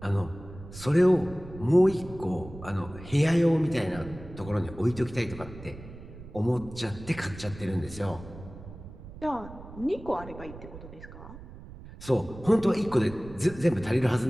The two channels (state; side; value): noise; right; rumble, 15 dB below the sound